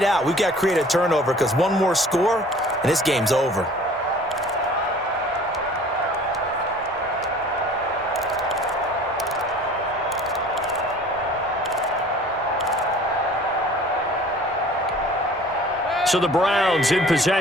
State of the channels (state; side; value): normal; both; correlation 0.48